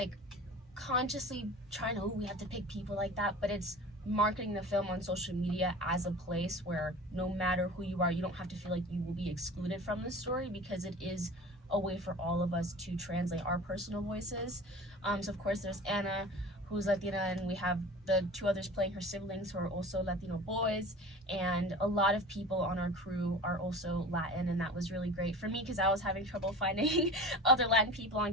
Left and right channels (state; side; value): normal; both; correlation 0.38